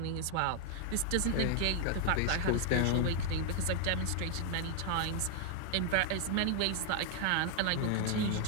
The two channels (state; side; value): different; both; correlation 0.00